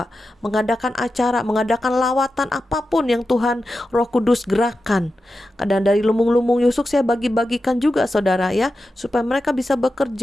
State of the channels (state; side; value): normal; both; correlation 0.91